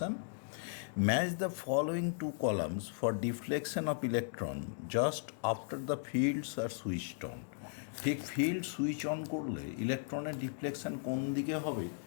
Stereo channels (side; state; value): right; silent; digital silence